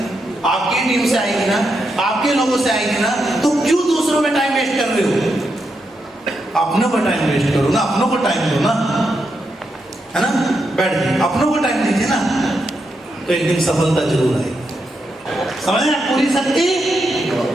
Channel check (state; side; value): normal; both; correlation 0.84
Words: आपकी टीम से आएगी ना, आपके लोगों से आएगी ना। तो क्यों दूसरों पे टाइम वेस्ट कर रहे हो? अपनों को टाइम वेस्ट करो ना, अपनों को टाइम दो ना, है ना। बैठ जाइए, अपनों को टाइम दीजिए ना, तो एक दिन सफलता जरूर आएगी। समझ रहे हैं? पूरी शक्ति